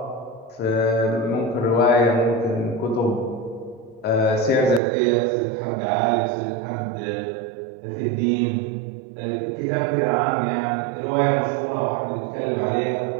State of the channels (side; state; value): left; drops out; at 4.8 s